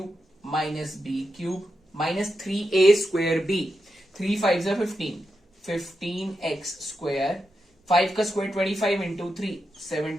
minus B cube minus 3a square B, 3 5 जा 15x स्क्वायर, 5 का स्क्वायर 25 इंटू 3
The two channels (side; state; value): both; normal; correlation 0.87